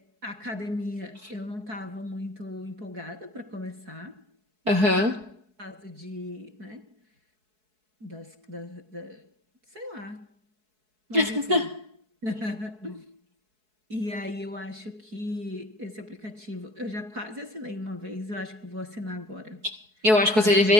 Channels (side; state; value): left; late; 4.7 ms